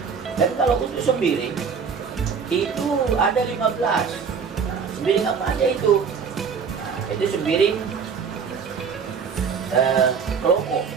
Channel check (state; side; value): quieter; left; 6.1 dB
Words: Dan kalau untuk sembiring itu ada 15. Nah, sembiring apa aja itu? Nah, itu sembiring keloko.